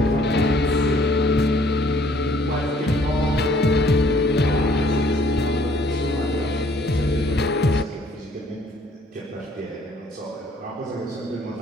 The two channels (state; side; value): normal; both; correlation 0.60